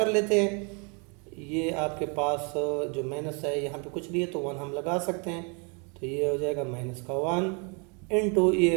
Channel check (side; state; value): left; quieter; 35.3 dB